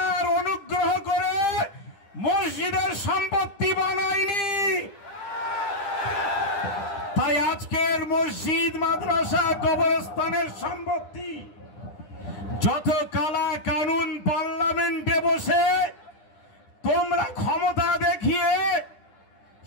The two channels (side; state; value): right; late; 10 ms